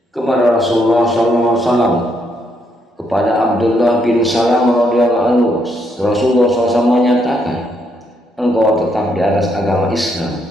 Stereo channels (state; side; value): normal; both; correlation 0.75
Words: Kepada Rasulullah SAW, kepada Abdullah bin Salam radhiyallahu anhu, Rasulullah SAW menyatakan, "Engkau tetap di atas agama Islam